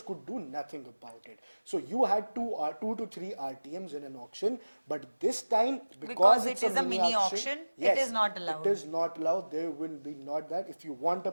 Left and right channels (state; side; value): inverted; both; correlation -1.00